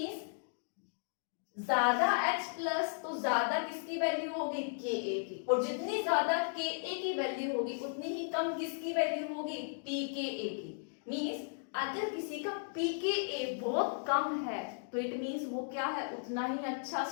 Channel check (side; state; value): right; silent; digital silence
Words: ज्यादा H प्लस तो ज्यादा किसकी वैल्यू होगी, Ka की, और जितनी ज्यादा Ka की वैल्यू होगी उतनी ही कम किसकी वैल्यू होगी, pKa की। मींस अगर किसी का pKa बहुत कम है तो इट मींस वो क्या है, उतना ही अच्छा